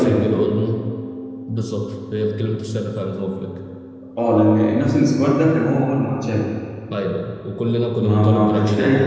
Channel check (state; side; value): identical; both; correlation 1.00